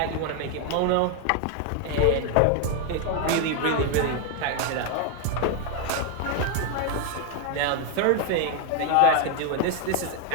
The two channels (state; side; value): different; both; correlation 0.01